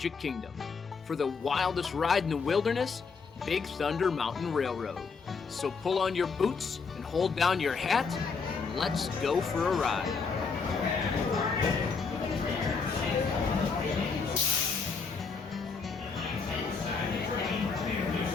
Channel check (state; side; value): quieter; right; 5.1 dB